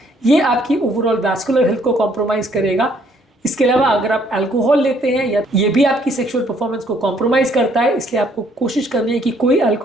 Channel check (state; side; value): normal; both; correlation 0.65